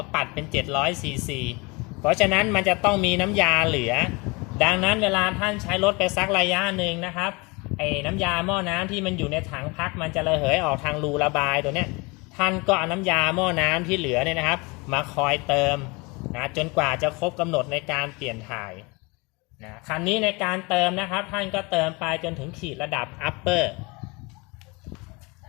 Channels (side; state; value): right; quieter; 27.0 dB